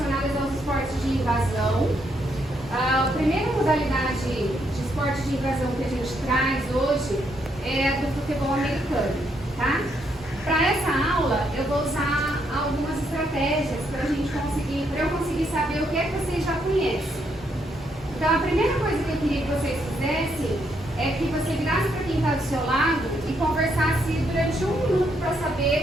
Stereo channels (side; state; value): both; normal; correlation 0.75